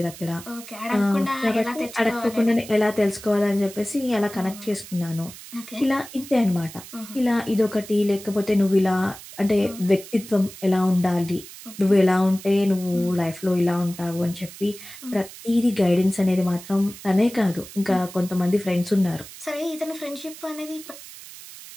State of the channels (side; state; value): right; noise; hiss, 16 dB below the sound